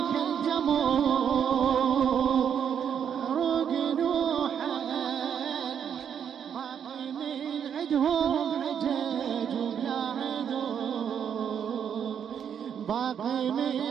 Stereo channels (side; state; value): left; quieter; 8.2 dB